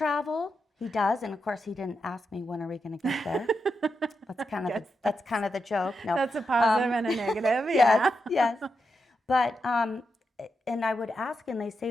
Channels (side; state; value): both; normal; correlation 0.86